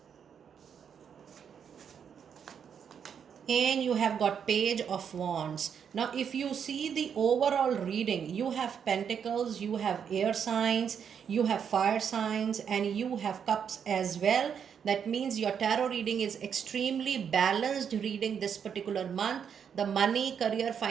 And you have got Page of Wands. Now if you see the overall reading, you have Pentacles, you have air signs, you have fire signs, and you have cups as well. That means your tarot reading is extremely balanced reading this particular month. The money, career,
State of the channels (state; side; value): quieter; left; 7.6 dB